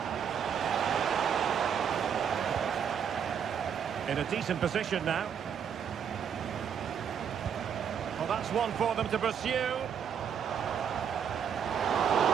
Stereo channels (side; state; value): left; quieter; 7.8 dB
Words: In a decent position now. Well, that's one for them to pursue.